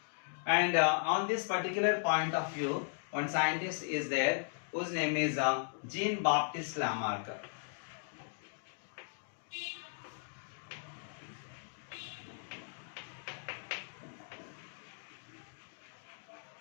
And on this particular point of view, one scientist is there whose name is Jean-Baptiste Lamarck.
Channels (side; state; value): right; silent; digital silence